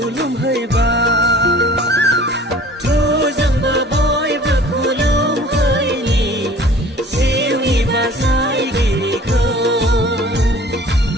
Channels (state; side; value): normal; both; correlation 0.47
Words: जोंबो बयबो खुलुमहैनि जिउनि बासायगिरिखौ